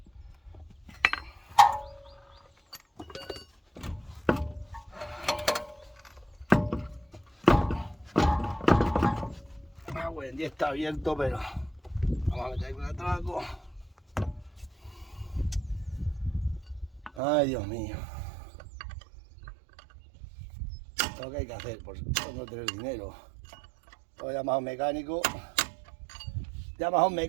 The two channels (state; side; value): drops out; left; at 17.2 s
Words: Bueno, ya está abierto, pero vamos a meter con el atraco. Ay, Dios mío. Lo que hay que hacer por no tener dinero. Lo llamas a un mecánico. Llamas a un